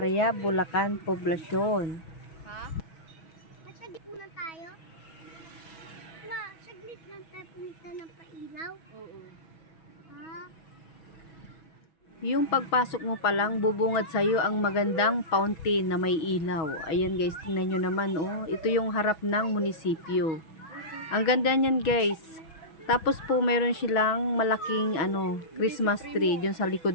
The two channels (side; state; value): right; late; 6.1 ms